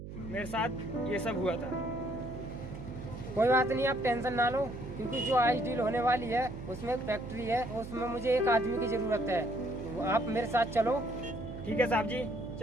मेरे साथ ये सब हुआ था। कोई बात नहीं, आप टेंशन ना लो, क्योंकि जो आज डील होने वाली है उसमें एक फैक्ट्री है, उसमें मुझे एक आदमी की ज़रूरत है। तो आप मेरे साथ चलो। ठीक है साहब जी,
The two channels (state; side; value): noise; right; hum, 11 dB below the sound